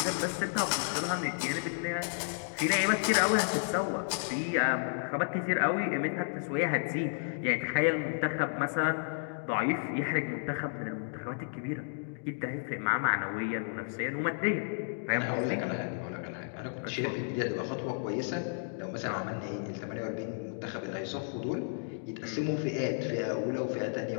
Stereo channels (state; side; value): silent; right; digital silence